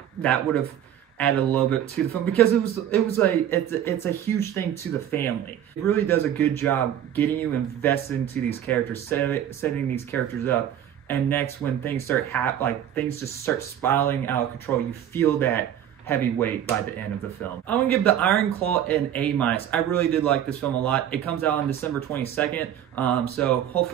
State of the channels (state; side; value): quieter; left; 10.5 dB